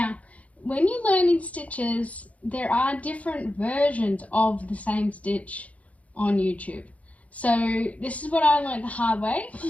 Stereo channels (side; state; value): right; late; 0.067 ms